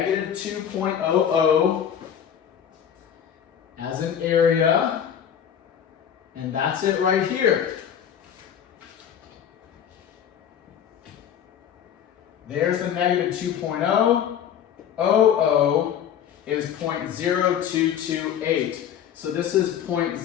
2.00 as an area. And that's it right here. There's the negative 2.0. 00 is 0.0228. So this is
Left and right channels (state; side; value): quieter; right; 9.0 dB